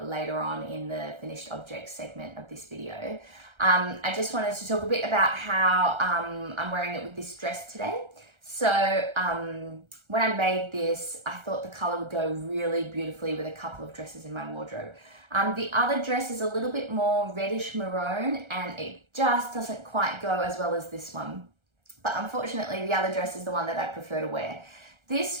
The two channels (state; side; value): late; left; 1.3 ms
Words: later on in the finished objects segment of this video. I just wanted to talk a bit about how I'm wearing it with this dress today. So when I made this, I thought the color would go really beautifully with a couple of dresses in my wardrobe. The other dress is a little bit more reddish maroon and it just doesn't quite go as well as this one. But unfortunately, the other dress is the one that I prefer to wear.